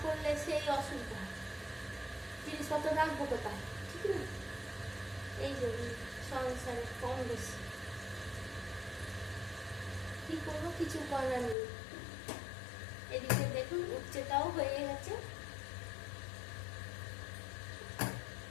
করলে সেই অসুবিধা, জিনিসপত্র রাখবো কোথায়, ঠিক না? এই যে সংসারে কম বেশি কি করবো, কিছু করার নেই। এদিকে দেখুন উচ্চটাও হয়ে গেছে।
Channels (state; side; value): drops out; right; at 11.6 s